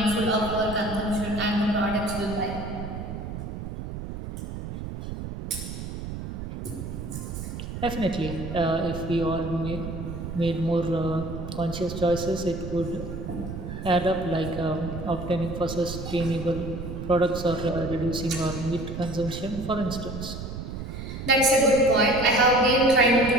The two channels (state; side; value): noise; right; rumble, 7 dB below the sound